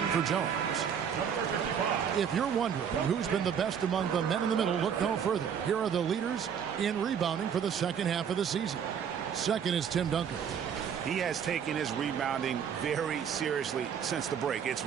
for Jones. If you're wondering who's been the best among the men in the middle, look no further. Here are the leaders in rebounding for the second half of the season. Second is Tim Duncan. He has taken his rebounding very seriously since the break. It's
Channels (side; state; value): left; quieter; 7.8 dB